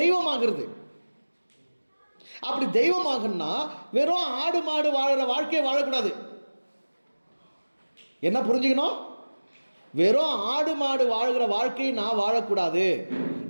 அப்படி தெய்வமாகனா வெறும் ஆடு மாடு வாழற வாழ்க்கையை வாழக்கூடாது. என்ன புரிஞ்சுக்கணும்? வெறும் ஆடு மாடு வாழ்கிற வாழ்க்கையை நான் வாழக்கூடாது.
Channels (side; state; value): both; inverted; correlation -1.00